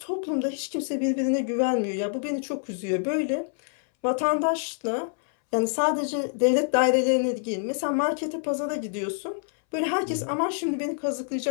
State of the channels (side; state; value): right; silent; 61 dB below the other